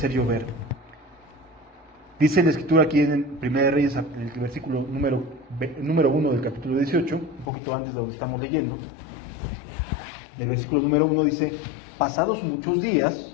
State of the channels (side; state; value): right; drops out; at 7.5 s